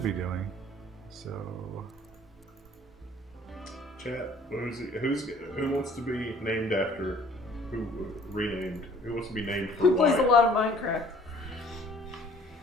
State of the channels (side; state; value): both; normal; correlation 0.54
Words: be doing. So, Chat. Who wants to be named after? Who renamed? Who wants to be named for? Who plays a Wyatt? lot of Minecraft?